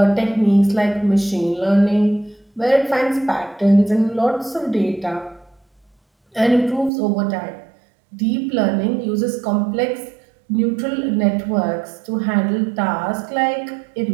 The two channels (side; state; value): left; drops out; at 6.9 s